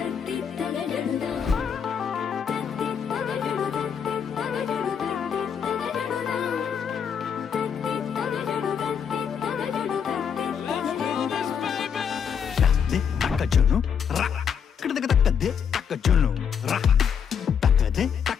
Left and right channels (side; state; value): right; quieter; 7.4 dB